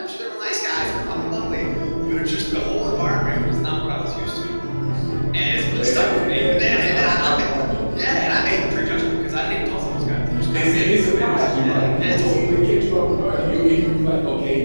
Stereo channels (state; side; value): inverted; both; correlation -1.00